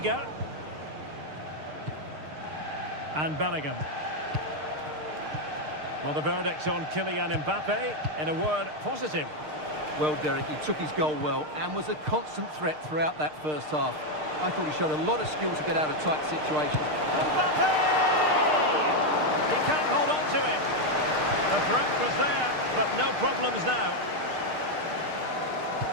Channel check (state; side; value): late; left; 6.6 ms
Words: And Bellingham. Well, the verdict on Kylian Mbappe, in a word, positive. Well, Derek, he took his goal well and was a constant threat throughout that first half. I thought he showed a lot of skill to get out of tight situations. Mbappe! He can't hold on to it. The threat was there, but no problems now.